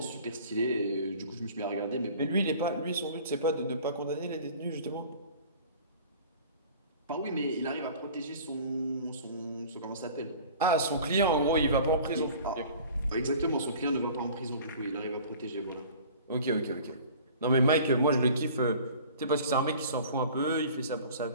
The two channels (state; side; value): inverted; both; correlation -0.45